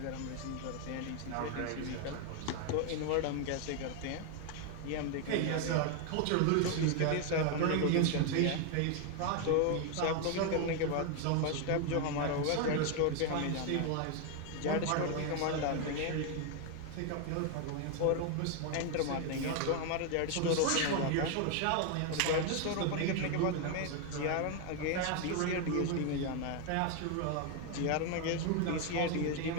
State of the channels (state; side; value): different; both; correlation 0.01